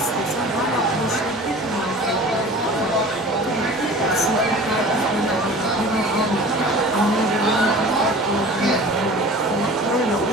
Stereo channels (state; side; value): normal; both; correlation 0.41